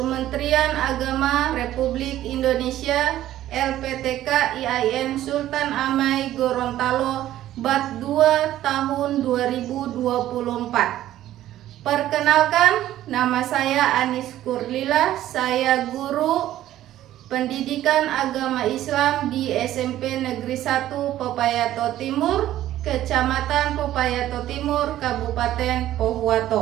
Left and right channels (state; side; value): quieter; left; 13.3 dB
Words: Agama Republik Indonesia LPTK IAIN Sultan Amai Gorontalo Bat 2 tahun 2024. Perkenalkan, nama saya Anis Kurlila, saya guru Pendidikan Agama Islam di SMP Negeri 1 Pepayato Timur, Kecamatan Pepayato Timur, Kabupaten